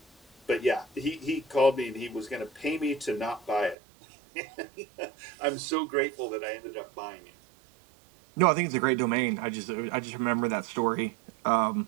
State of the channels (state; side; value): drops out; left; at 3.8 s